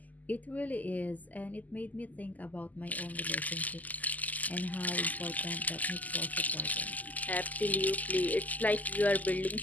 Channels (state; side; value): late; right; 0.080 ms